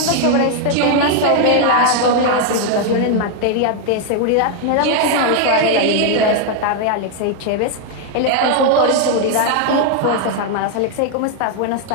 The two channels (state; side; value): different; both; correlation 0.00